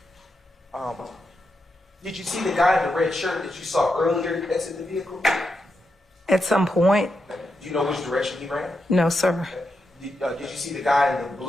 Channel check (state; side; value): normal; both; correlation 0.85